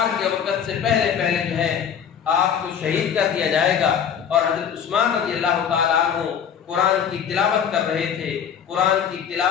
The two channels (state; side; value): quieter; right; 8.0 dB